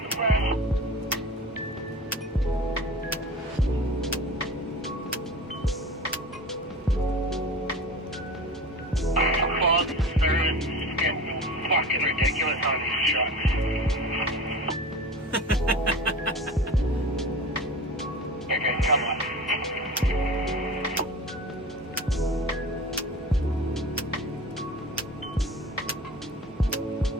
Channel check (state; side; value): normal; both; correlation 0.35